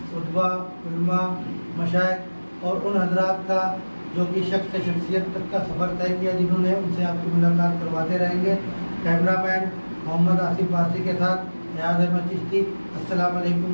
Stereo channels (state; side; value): inverted; both; correlation -1.00